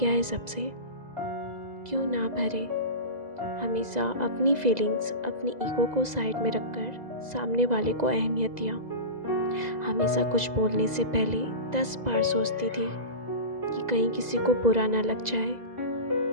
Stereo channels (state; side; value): late; left; 2.0 ms